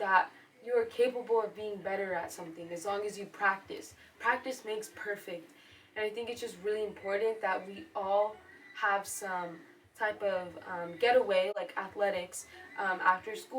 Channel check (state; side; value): identical; both; correlation 1.00